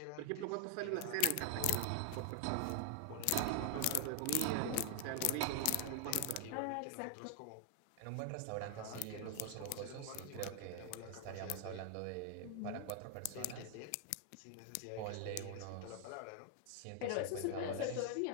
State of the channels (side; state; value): both; different; correlation 0.00